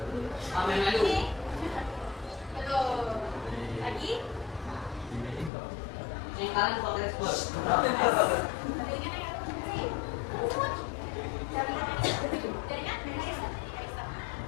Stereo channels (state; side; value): drops out; right; at 5.5 s